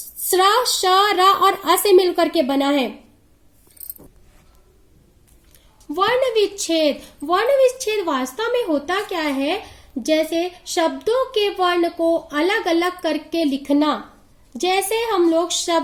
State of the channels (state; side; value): identical; both; correlation 1.00